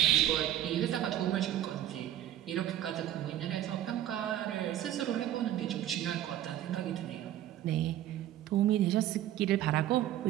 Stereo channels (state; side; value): quieter; left; 12.3 dB